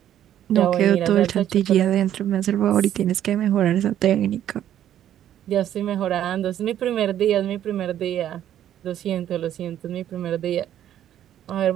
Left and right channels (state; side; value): quieter; left; 11.2 dB